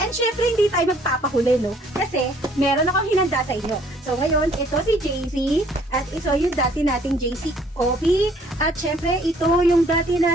And syempre, hindi tayo magpapahuli, no? Kasi, meron akong hinanda sa inyo. So, ngayon, ito si JC. At ito yung dati nating JC Coffee. At syempre, ito yung dati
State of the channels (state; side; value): normal; both; correlation 0.60